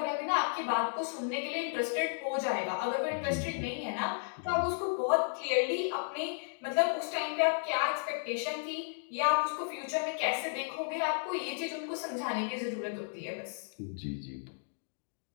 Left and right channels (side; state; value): right; silent; digital silence